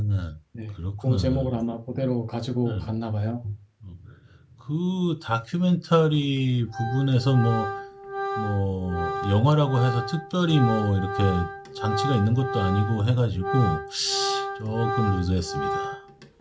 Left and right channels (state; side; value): identical; both; correlation 1.00